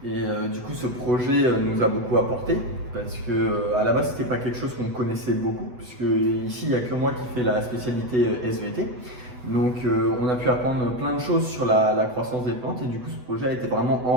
Et du coup, ce projet nous a beaucoup apporté parce que à la base, c'était pas quelque chose qu'on connaissait beaucoup, puisque ici, il n'y a que moi qui fais la spécialité SVT. Donc, on a pu apprendre plein de choses sur la croissance des plantes et du coup, ce projet a été vraiment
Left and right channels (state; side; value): late; left; 8.0 ms